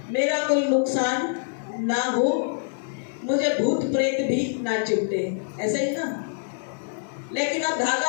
मेरा कोई नुकसान ना हो, मुझे भूत प्रेत भी ना चिपटे, ऐसा ही ना। लेकिन अब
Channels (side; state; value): right; silent; digital silence